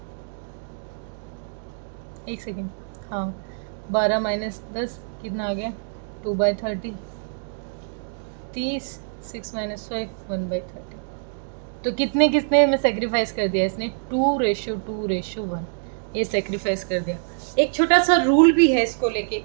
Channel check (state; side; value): silent; left; digital silence